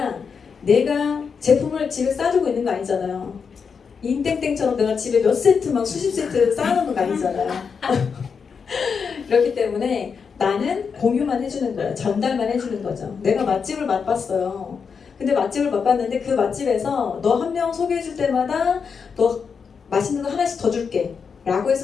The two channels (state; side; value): quieter; right; 6.0 dB